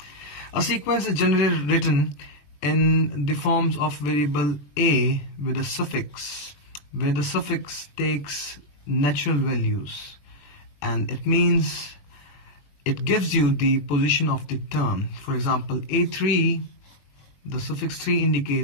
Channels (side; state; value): right; late; 21 ms